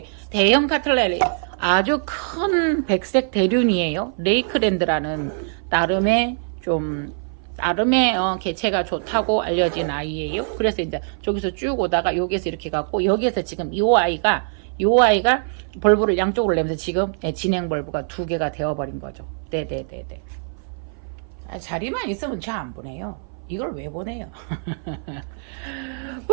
대형 카틀레리, 아주 큰 백색 대륜이에요. 레이크랜드라는 나름의 개체가 좋다고 알려진 아이예요. 그래서 이제 저기서 쭉 오다가 여기에서 이렇게 갖고, 여기에서 지금 요 아이가 벌브를 양쪽으로 내면서 지금 진행 벌브가 2개가 되어버린 거죠. 네네네네. 자리만 있으면 저 안 보내요. 이걸 왜 보내요?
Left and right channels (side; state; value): left; silent; 57 dB below the other